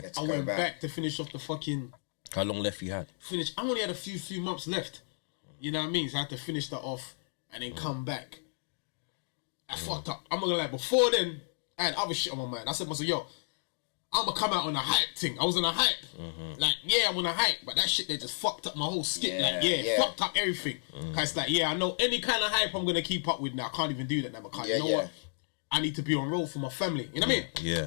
Let's I go went back to finish off the fucking How long left you had? finish. I only had a few months left. You know what I mean? So I had to finish that off and then come back. I fucked up. I'm not gonna lie. Before then, I had other shit on my mind. I said to myself, yo, I'm gonna come out on a hype thing. I was on a hype. Like, yeah, I'm on a hype, but that shit they just fucked up my whole skit. Fucked up everything. Cause it's like, yeah, I know any kind of hype I'm gonna keep up with now. I can't even do that now because you know what? I need to be on roll for my family. You know what I mean?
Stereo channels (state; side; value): silent; right; digital silence